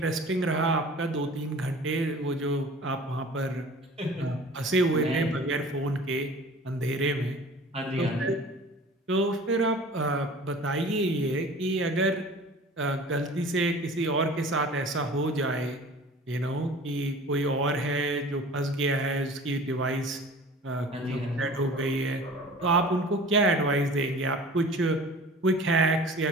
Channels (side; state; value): both; normal; correlation 0.43